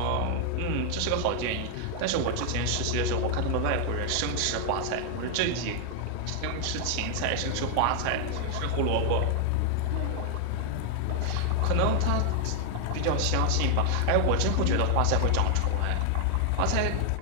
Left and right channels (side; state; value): both; different; correlation 0.00